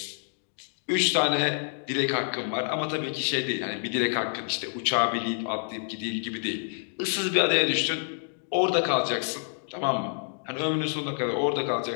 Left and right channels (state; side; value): silent; right; digital silence